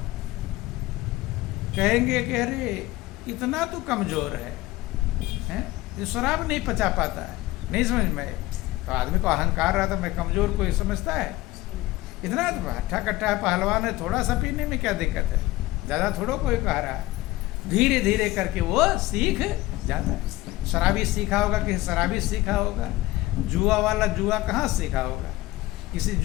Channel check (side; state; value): right; quieter; 18.0 dB